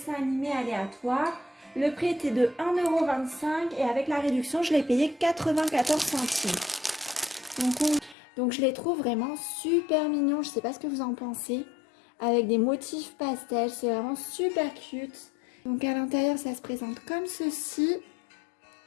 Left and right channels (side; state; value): right; drops out; at 8.2 s